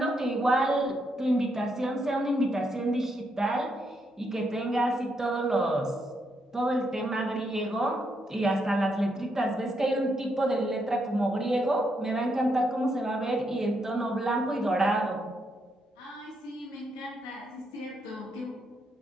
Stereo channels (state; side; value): normal; both; correlation 0.78